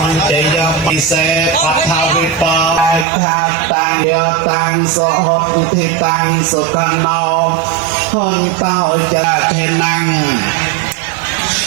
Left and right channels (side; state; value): left; drops out; at 3.1 s